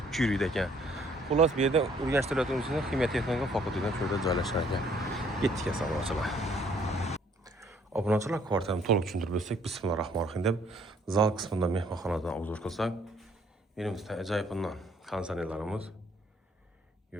yuriydi ekan. Xullas, bu yerda Urganch davlat universitetining Ximiya texnika fakultetidan shurda joylashgan ekan. Ketdik assalomu. Obunachilar kvartirani to'liq tushuntirib o'tsak, bismillahirrohmanirrohim deb zal qismidan mehmonxonadan obzor qilsak, menimizda ajoyibundan konsertlarimiz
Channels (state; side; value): normal; both; correlation 0.63